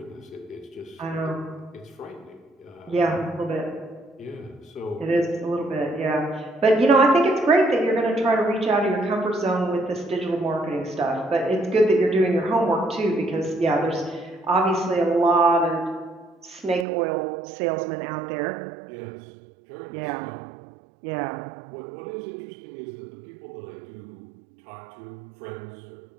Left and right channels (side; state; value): left; drops out; at 16.9 s